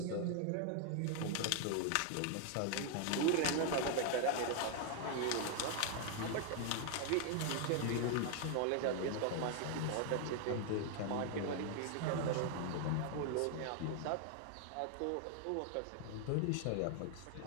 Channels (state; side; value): different; both; correlation 0.00